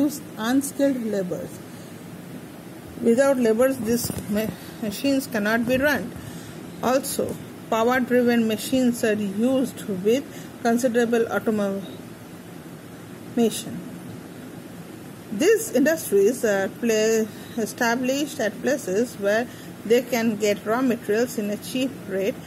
unskilled laborers. Without laborers, these machines cannot be run. Also, power-driven machines are used with considerable automation. These industries are established at places where they can get raw materials in a cheap rate.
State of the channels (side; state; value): both; identical; correlation 1.00